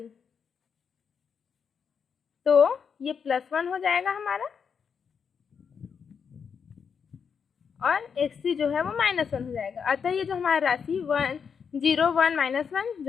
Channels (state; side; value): quieter; right; 6.5 dB